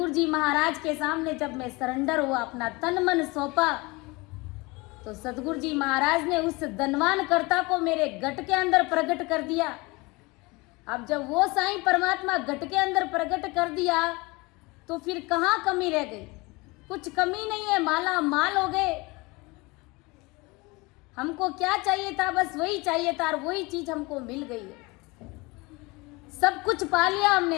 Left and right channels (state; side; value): quieter; right; 24.7 dB